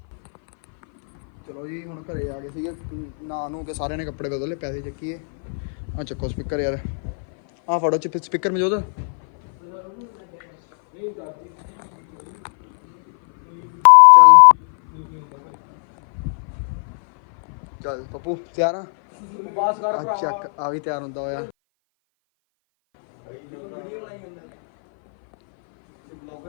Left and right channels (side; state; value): right; silent; 58 dB below the other